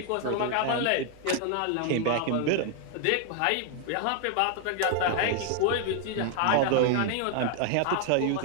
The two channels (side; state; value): both; different; correlation 0.00